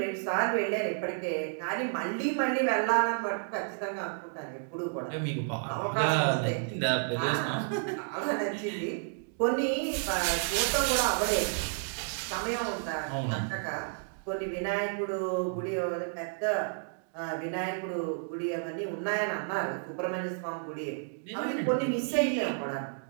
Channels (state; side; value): silent; left; 57 dB below the other